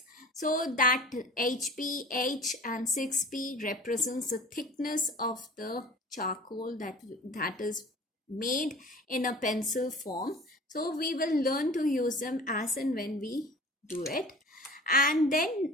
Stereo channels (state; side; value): normal; both; correlation 0.42